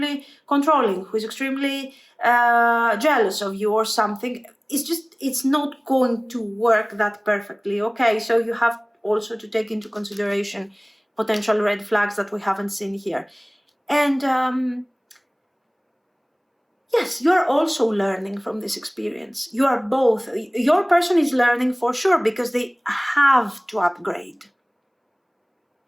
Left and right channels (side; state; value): both; identical; correlation 1.00